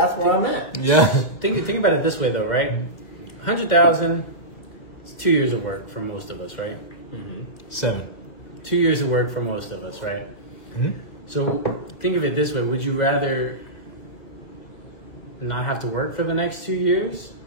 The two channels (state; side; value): late; right; 2.0 ms